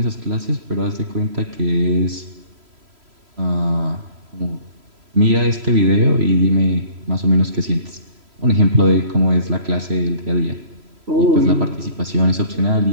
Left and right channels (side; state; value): left; late; 3.0 ms